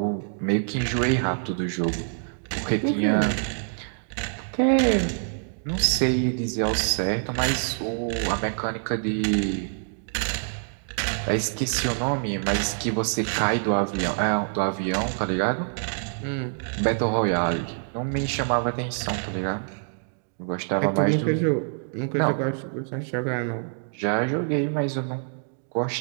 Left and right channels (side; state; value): left; silent; digital silence